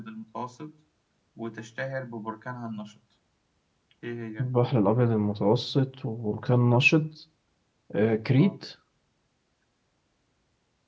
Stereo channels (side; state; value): both; identical; correlation 1.00